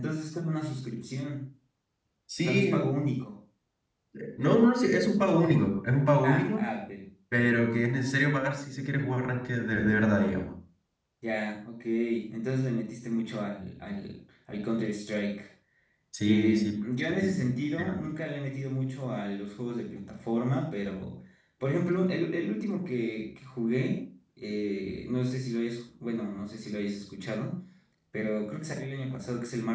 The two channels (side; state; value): both; identical; correlation 1.00